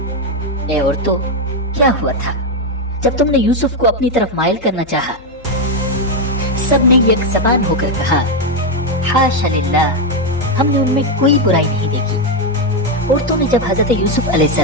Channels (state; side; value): noise; left; hum, 25 dB below the sound